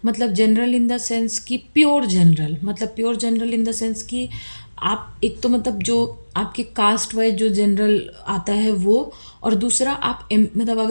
मतलब जनरल इन द सेंस कि प्योर जनरल, मतलब pure general in the sense कि आप एक तो मतलब जो आपकी कास्ट वाइज जो जनरल आता है वो, और दूसरा आप मतलब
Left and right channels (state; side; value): inverted; both; correlation -1.00